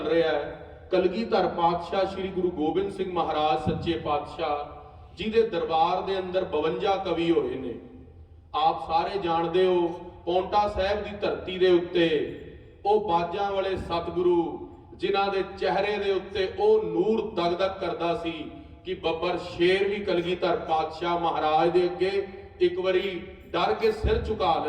ਰਿਹਾ ਹੈ ਕਲਗੀਧਰ ਪਾਤਸ਼ਾਹ ਸ਼੍ਰੀ ਗੁਰੂ ਗੋਬਿੰਦ ਸਿੰਘ ਮਹਾਰਾਜ ਸੱਚੇ ਪਾਤਸ਼ਾਹ ਜੀ ਦੇ ਦਰਬਾਰ ਦੇ ਅੰਦਰ 52 ਕਵੀ ਹੋਏ ਨੇ। ਆਪ ਸਾਰੇ ਜਾਣਦੇ ਹੋ, ਪੌਂਟਾ ਸਾਹਿਬ ਦੀ ਧਰਤੀ ਦੇ ਉੱਤੇ ਉਹ ਬਾਜਾਂ ਵਾਲੇ ਸਤਿਗੁਰੂ ਜਿਨ੍ਹਾਂ ਦੇ ਚਿਹਰੇ ਦੇ ਉੱਤੇ ਉਹ ਨੂਰ ਦਗਦਗ ਕਰਦਾ ਸੀ ਕਿ ਬੱਬਰ ਸ਼ੇਰ ਵੀ ਕਲਗੀਧਰ ਪਾਤਸ਼ਾਹ ਮਹਾਰਾਜ ਦੇ ਅੱਗੇ ਇੱਕ ਵਾਰੀ ਡਰ ਕੇ ਸਿਰ ਝੁਕਾ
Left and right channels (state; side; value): identical; both; correlation 1.00